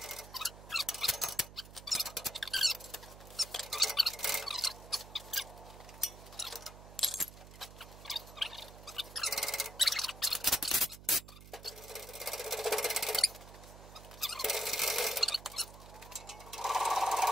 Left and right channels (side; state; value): right; noise; hum, 16 dB below the sound